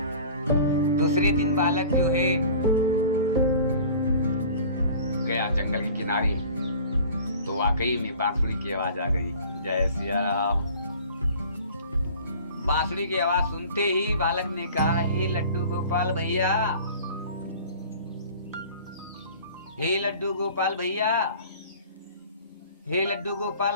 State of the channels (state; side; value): inverted; both; correlation -0.44